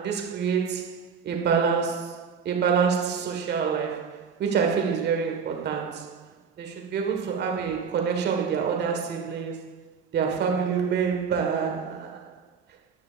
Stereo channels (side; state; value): left; quieter; 6.3 dB